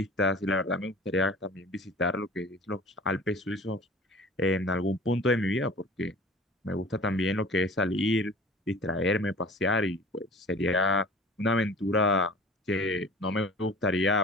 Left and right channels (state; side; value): normal; both; correlation 0.44